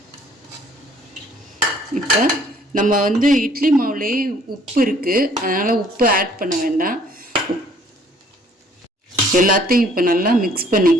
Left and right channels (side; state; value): both; normal; correlation 0.59